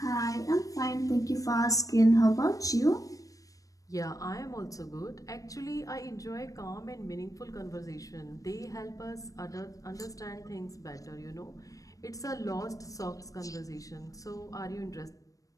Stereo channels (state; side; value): late; right; 0.16 ms